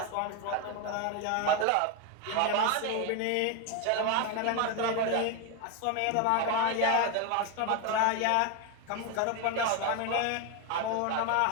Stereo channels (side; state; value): both; different; correlation 0.01